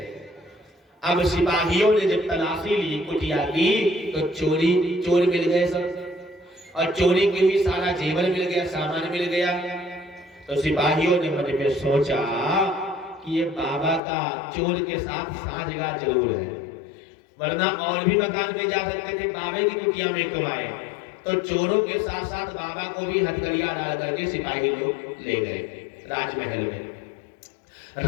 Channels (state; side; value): drops out; right; at 14.0 s